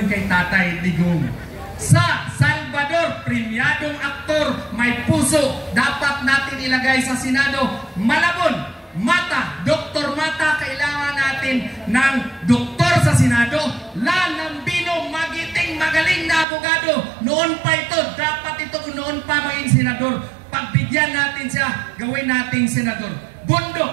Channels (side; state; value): left; drops out; at 16.4 s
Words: kay Tatay Digong. Sa Salvador, premiadong aktor, may puso, dapat natin ilagay sa Senado. Malabon, Mata, Dr. Mata, kailangan natin natin ng doktor sa Senado, Lanambino, magiting, magaling na abogado. Noon pa ito, dapat ito noon pa maging senador. Pagbigyan natin siya, gawin nating senador. Bundok,